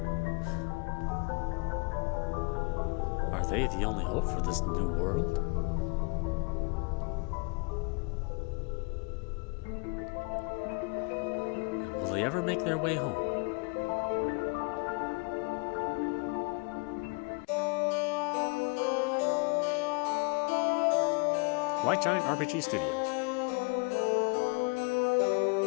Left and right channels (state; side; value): quieter; right; 31.3 dB